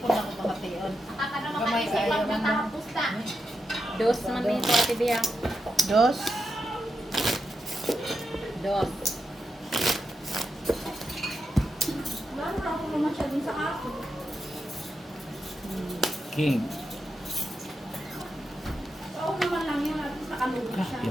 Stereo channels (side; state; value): both; normal; correlation 0.87